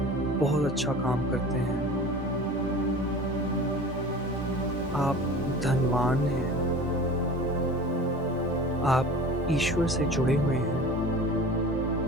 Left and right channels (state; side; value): normal; both; correlation 0.39